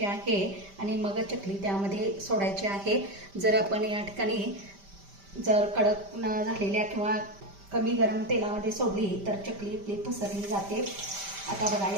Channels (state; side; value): late; left; 5.1 ms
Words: आहे आणि मग चकली त्यामध्ये सोडायची आहे. जर आपण या ठिकाणी जर कडक न झालेल्या किंवा कमी गरम तेलामध्ये सोडली तर चकली आपली पसरली जाते. आता बघा,